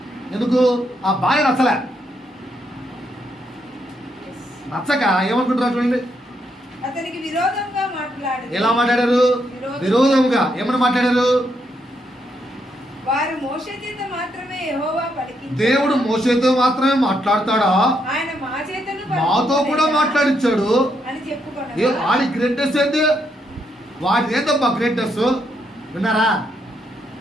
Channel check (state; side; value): normal; both; correlation 0.77